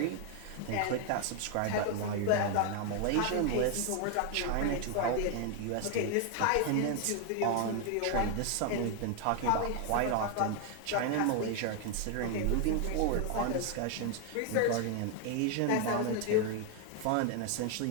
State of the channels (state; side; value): different; both; correlation 0.00